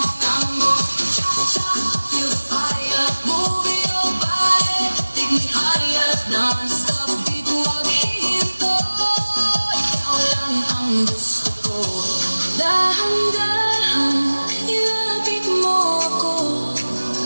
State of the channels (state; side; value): inverted; both; correlation -1.00